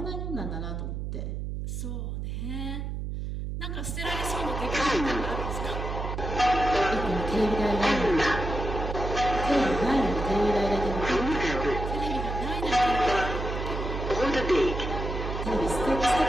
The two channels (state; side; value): noise; right; hum, 4 dB below the sound